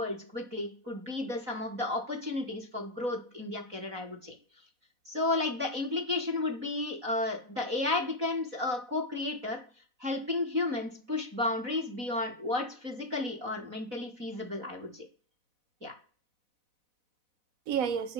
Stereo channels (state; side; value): late; left; 4.0 ms